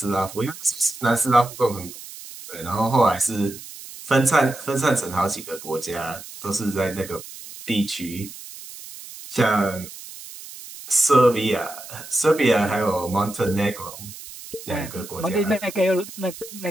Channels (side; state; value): right; noise; hiss, 14 dB below the sound